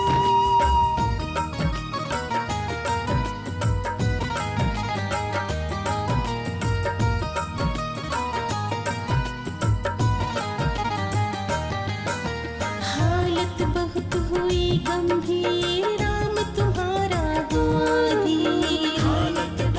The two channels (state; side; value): identical; both; correlation 1.00